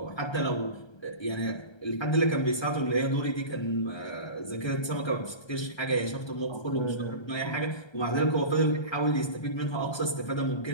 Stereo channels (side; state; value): right; late; 1.3 ms